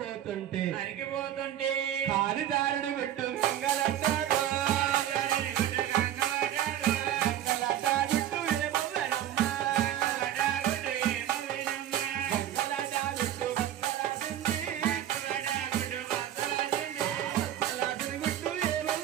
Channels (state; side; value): quieter; left; 11.6 dB